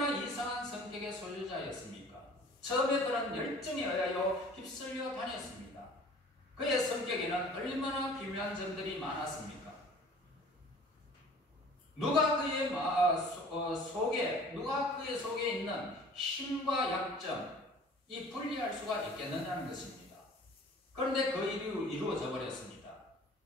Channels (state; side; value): normal; both; correlation 0.48